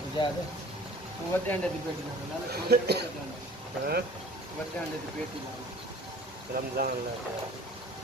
अंडे की पेटी लाओ वड्डे अंडे की पेटी लाओ रमजान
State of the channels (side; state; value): both; normal; correlation 0.47